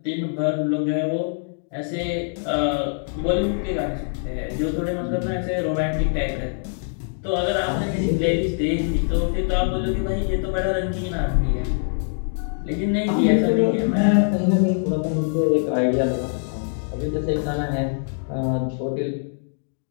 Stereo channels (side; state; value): right; silent; digital silence